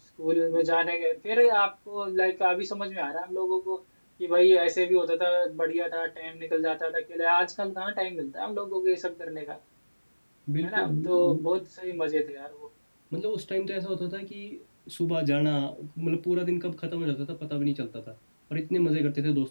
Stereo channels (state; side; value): inverted; both; correlation -1.00